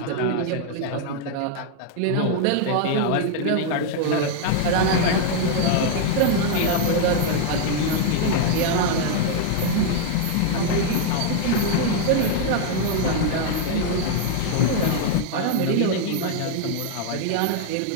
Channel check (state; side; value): different; both; correlation 0.00